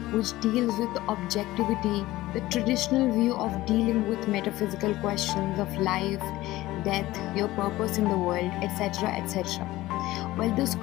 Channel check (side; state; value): right; quieter; 17.3 dB